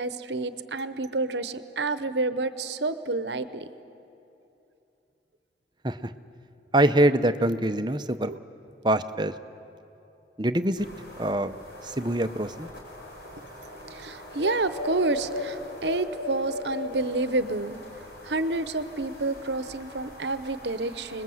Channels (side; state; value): both; normal; correlation 0.24